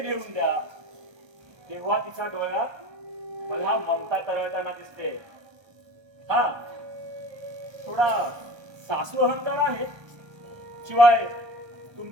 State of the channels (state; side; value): late; left; 1.2 ms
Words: नेऊन द्या. तेव्हा तिच्या डोळ्यात मला ममता तरळताना दिसते. हा थोडा सासू अहंकार आहे. शिवाय